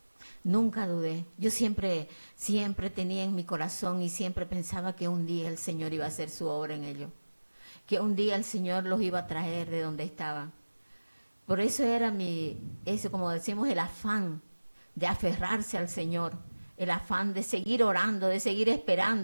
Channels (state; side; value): inverted; both; correlation -1.00